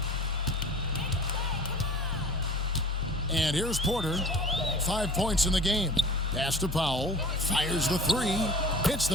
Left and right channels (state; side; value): normal; both; correlation 0.43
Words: And here's Porter. 5 points in the game. Pass to Powell. Fires the three. Hits